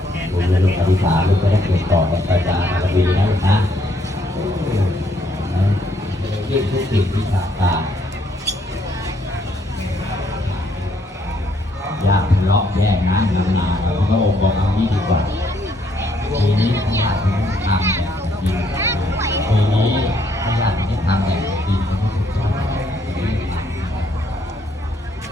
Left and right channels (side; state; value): both; normal; correlation 0.70